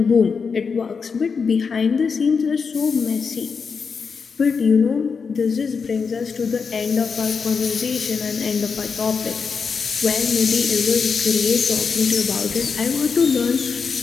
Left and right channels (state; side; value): quieter; right; 5.5 dB